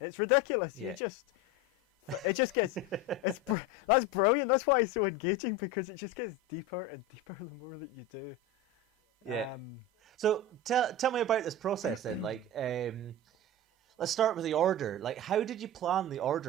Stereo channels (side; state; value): both; normal; correlation 0.25